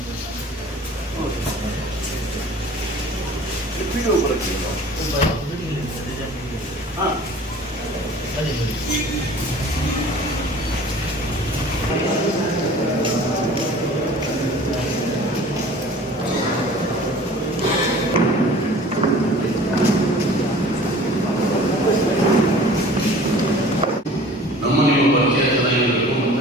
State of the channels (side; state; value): both; normal; correlation 0.46